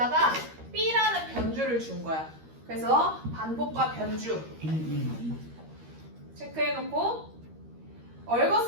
B라는 변주를 준 거야. 그래서 반복과 변주 1, 2. 체크해놓고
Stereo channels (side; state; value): left; late; 13 ms